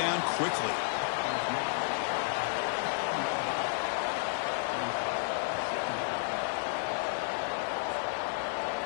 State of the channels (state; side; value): silent; right; digital silence